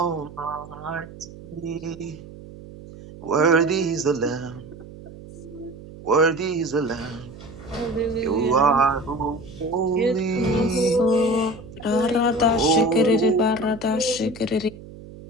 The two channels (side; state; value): right; noise; hum, 16 dB below the sound